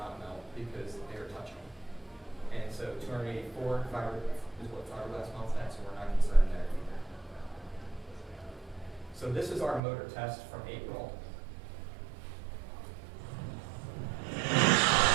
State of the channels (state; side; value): drops out; left; at 9.8 s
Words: melt because they are touching. And so 284 is what fiberglass melts at, so we're not concerned there either. So this is our motor test from April.